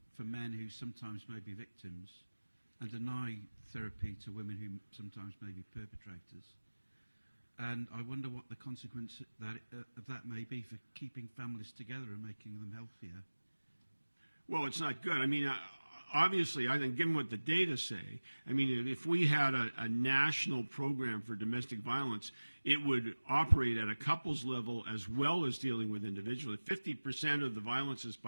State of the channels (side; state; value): both; inverted; correlation -1.00